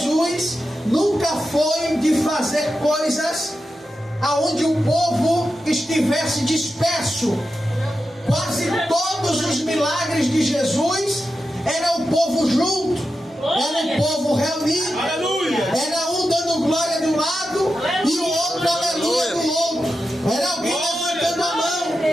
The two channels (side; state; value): both; normal; correlation 0.90